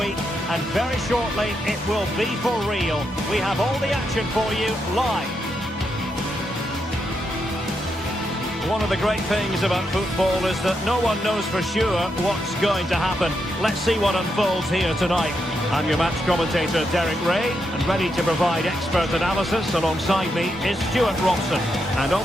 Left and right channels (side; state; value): both; normal; correlation 0.82